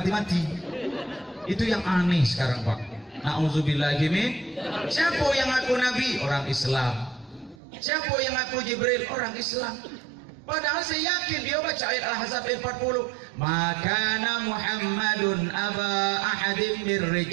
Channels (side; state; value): left; drops out; at 7.6 s